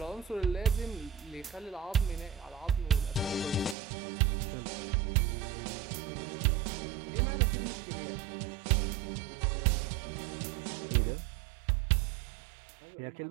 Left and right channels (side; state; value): left; drops out; at 3.8 s